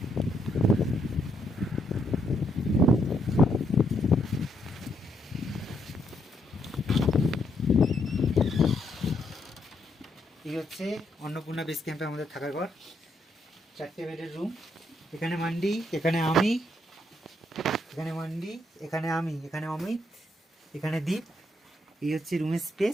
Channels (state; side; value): normal; both; correlation 0.76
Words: এই হচ্ছে অন্নপূর্ণা বেস ক্যাম্পে আমাদের থাকার ঘর। 4টে বেডের রুম। এখানে মান্ডি, এখানে আমি, এখানে মান্ডি, এখানে আমি, এখানে অমিত, এখানে দীপ। এই হচ্ছে রুমের